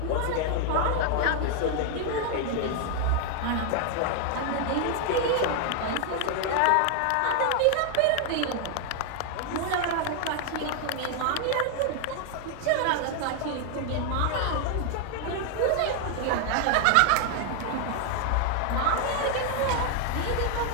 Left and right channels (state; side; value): different; both; correlation 0.00